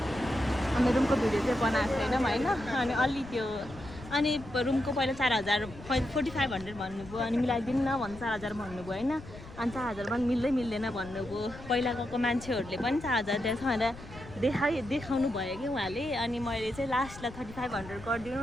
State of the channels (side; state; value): left; noise; rumble, 16 dB below the sound